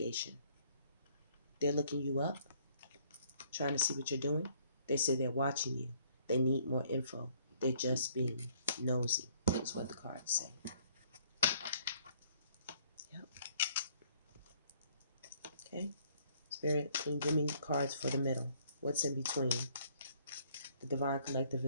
They're looking you up, trying to see what you're doing. They say they're watching you. They need more info. They're just being nosy, is what the cards say. Yep. Okay. Spirit, can you give me cards for the middle? What's in between? The Divine Collective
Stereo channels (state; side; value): inverted; both; correlation -0.62